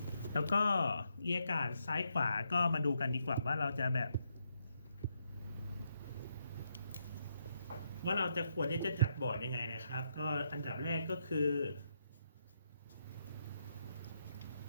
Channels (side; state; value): both; inverted; correlation -0.79